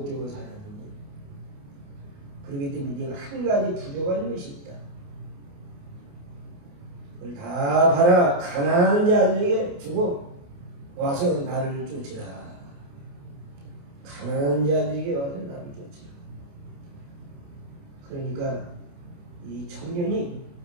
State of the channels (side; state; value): left; late; 28 ms